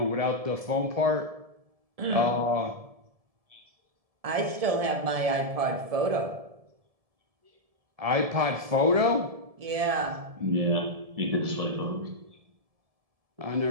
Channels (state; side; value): late; left; 1.7 ms